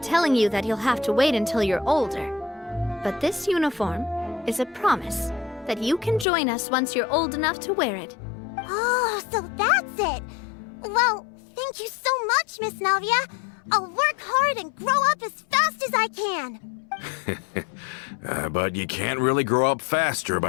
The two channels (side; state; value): right; drops out; at 6.2 s